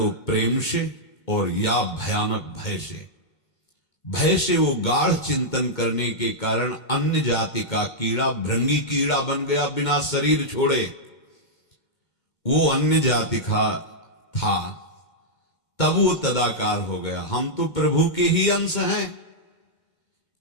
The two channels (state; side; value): late; right; 2.2 ms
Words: प्रेम से और या भयानक भय से। भय से वो गाढ़ चिंतन करने के कारण अन्य जाति का कीड़ा भृंगी कीड़ा बन गया, बिना शरीर छोड़े। वो अन्य जाति का था, तब वो तदाकार हो गया। हम तो प्रभु के ही अंश हैं।